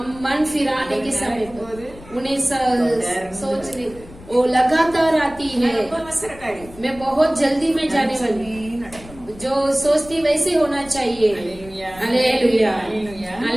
मन फिराने के समय पर போது उन्हें सोचने वो लगातार आती है। ரொம்ப அவசரக்காரி. मैं बहुत जल्दी में जाने वाली, நடக்கணும். जो सोचती वैसे होना चाहिए। அல்லேலூயா. हालेलुया। அல்லேலூயா.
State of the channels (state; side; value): noise; left; rumble, 19 dB below the sound